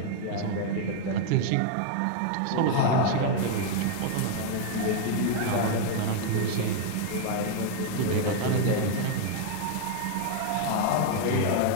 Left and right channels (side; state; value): both; different; correlation 0.00